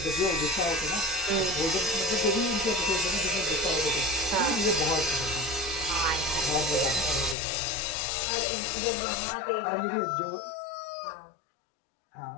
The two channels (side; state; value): right; drops out; at 7.4 s